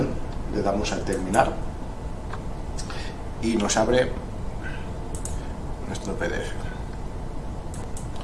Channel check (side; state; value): both; identical; correlation 1.00